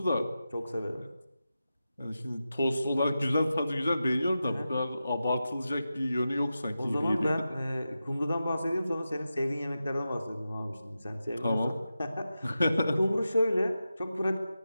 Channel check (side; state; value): both; inverted; correlation -0.91